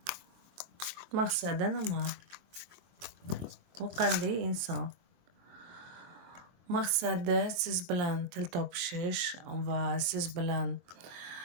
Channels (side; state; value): left; late; 23 ms